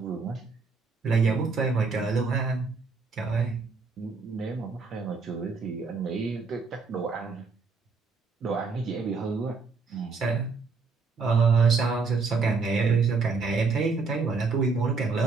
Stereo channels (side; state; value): left; quieter; 4.6 dB